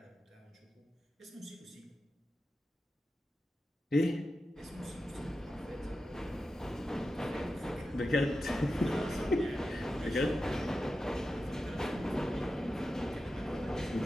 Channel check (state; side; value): normal; both; correlation 0.91